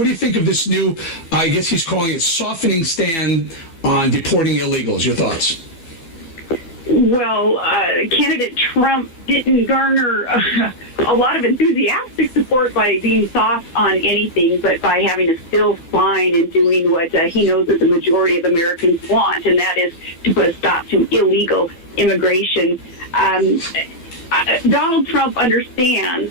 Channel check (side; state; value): right; late; 12 ms